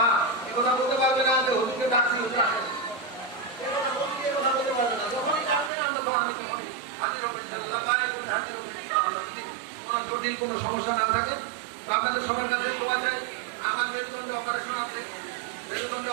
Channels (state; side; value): drops out; left; at 5.7 s